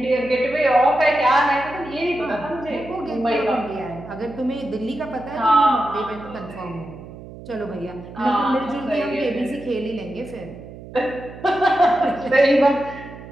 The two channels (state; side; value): noise; right; hum, 15 dB below the sound